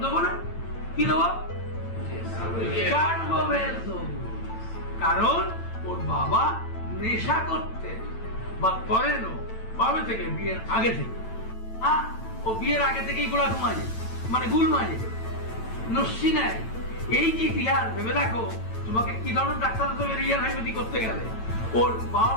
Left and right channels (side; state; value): right; late; 8.9 ms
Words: দেবো না? কি দেবো? কার্বোভেল দেবো। কারণ ওর বাবা নেশা করতে বা করেন কবে থেকে? বিয়ের আগে থেকে। ও বিয়ের আগে থেকেই গোলা মাঝে, মানে গুল মাঝে নস্যি নেয়। এই যে ইতিহাস ভেবে দেখো, তোমাকে কি ধরনের ডাক্তার রিয়াল হাইপোথি করতে গেলে ওর বাবা